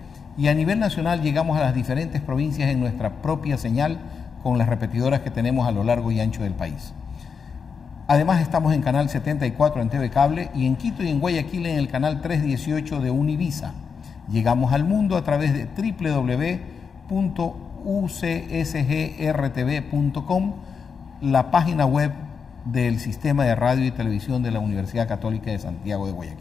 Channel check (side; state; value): right; quieter; 5.9 dB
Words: y a nivel nacional llegamos a las diferentes provincias en nuestra propia señal con las repetidoras que tenemos a lo largo y ancho del país. Además estamos en Canal 74 en TV Cable y en Quito y en Guayaquil en el Canal 318 de Univisa. Llegamos al mundo a través de www.ucsgrtv.com, la página web del Sistema de Radio y Televisión de la Universidad Católica de Santiago de